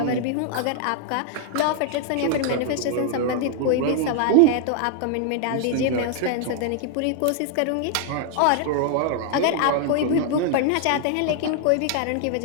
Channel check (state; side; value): different; both; correlation 0.00